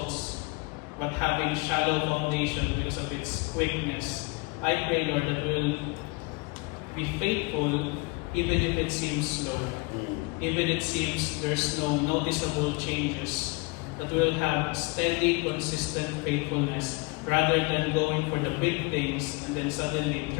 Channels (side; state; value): right; quieter; 27.8 dB